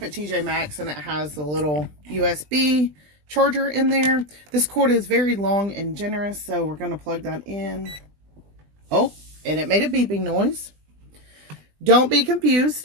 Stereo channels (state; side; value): late; left; 20 ms